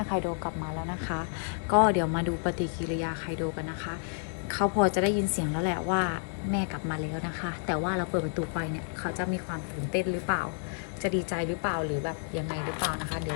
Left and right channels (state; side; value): silent; right; 58 dB below the other